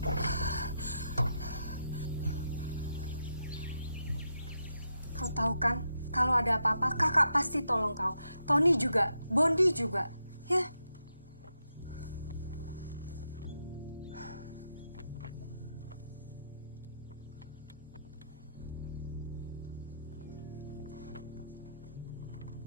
Kau tahu kan, kalau ada apa-apa, kakak pasti tolong kau. Tony juga, Bondi juga, ya.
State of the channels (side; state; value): both; inverted; correlation -0.83